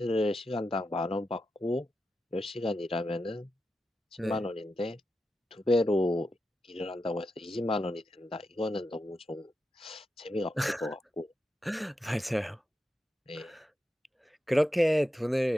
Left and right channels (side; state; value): both; normal; correlation 0.88